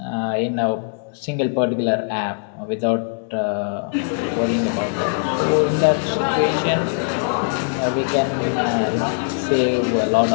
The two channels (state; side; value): silent; right; 65 dB below the other